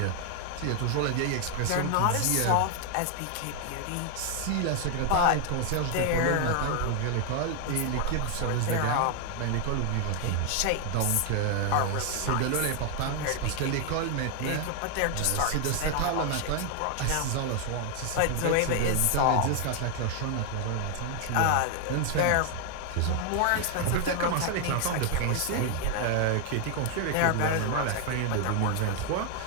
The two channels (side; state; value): both; different; correlation 0.00